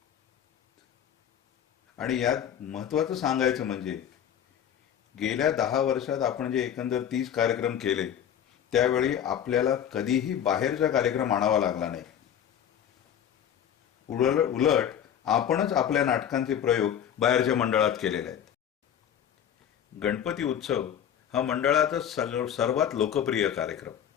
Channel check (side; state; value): right; quieter; 9.4 dB